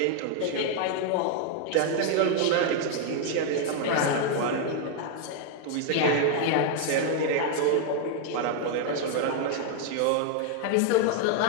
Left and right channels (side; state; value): both; different; correlation 0.00